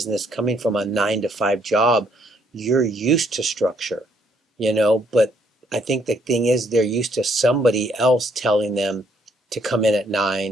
coming from a 9 to 5 job, you're used to structure. But I think the thing is they're used to somebody else telling them to come in at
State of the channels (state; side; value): normal; both; correlation 0.69